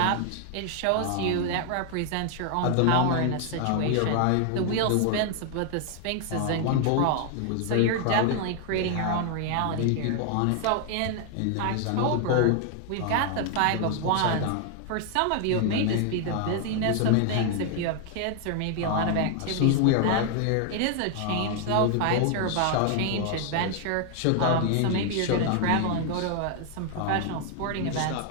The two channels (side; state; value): both; different; correlation 0.00